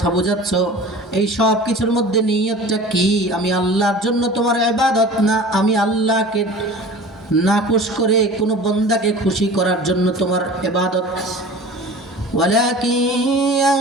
বোঝাচ্ছ, এই সব কিছুর মধ্যে নিয়তটা কি? আমি আল্লাহর জন্য তোমার ইবাদত না, আমি আল্লাহকে নাখুশ করে কোনো বান্দাকে খুশি করার জন্য তোমার ইবাদত। ওয়ালাকিন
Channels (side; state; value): both; normal; correlation 0.40